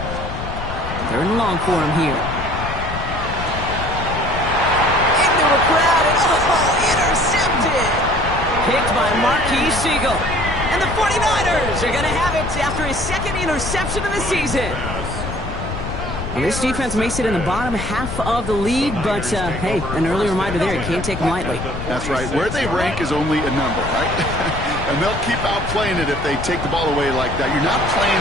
Third and long for him here. Into a crowd, and intercepted! Picked by Marquis Siegel. And the 49ers are going to have it after his second interception of the season. Well, this defense may sit in the bottom half of the league, but, hey, an early reminder there, you can't take them lightly. That's right. Where they rank is only a number, right? And they'll keep outplaying it if they take the ball away like that. You're not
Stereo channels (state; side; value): noise; left; rumble, 7 dB below the sound